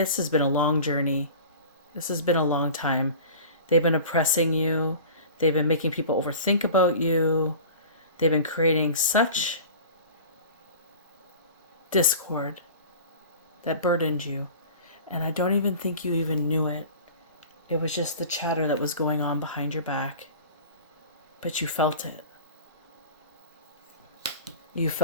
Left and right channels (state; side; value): inverted; both; correlation -0.39